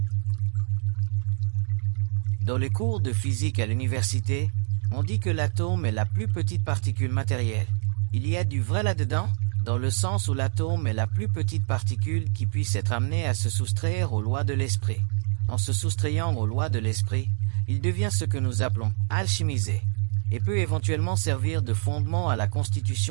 Dans les cours de physique à l'université, on dit que l'atome est la plus petite particule matérielle. Il y a du vrai là-dedans, dans le sens où l'atome est la plus petite particule qui puisse être amenée à se soustraire aux lois de l'esprit. En se soustrayant aux lois de l'esprit, il devient ce que nous appelons alchimisé, et peut éventuellement servir de fondement à la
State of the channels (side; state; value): left; silent; 58 dB below the other